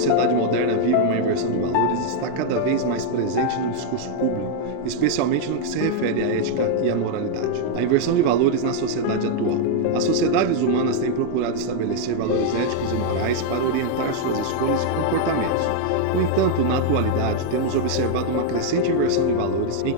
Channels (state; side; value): different; both; correlation 0.00